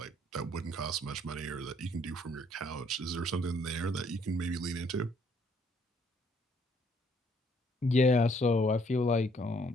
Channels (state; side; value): normal; both; correlation 0.65